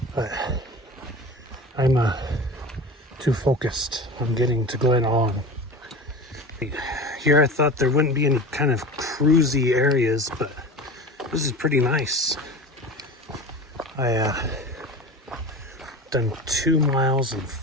But I'm too focused on getting to Glen Aulin. Here I thought there wouldn't be any kind of cruisy areas, but this is pretty nice. I done 2 miles in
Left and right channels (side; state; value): both; normal; correlation 0.33